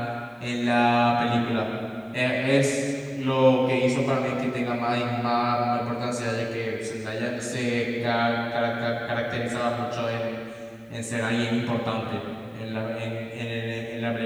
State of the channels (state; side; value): identical; both; correlation 1.00